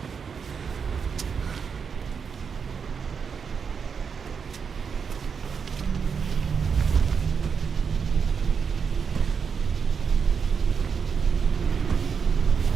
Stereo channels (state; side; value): quieter; left; 6.2 dB